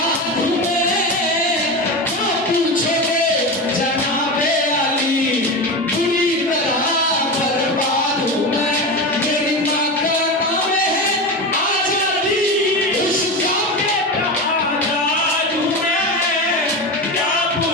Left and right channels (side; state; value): both; normal; correlation 0.22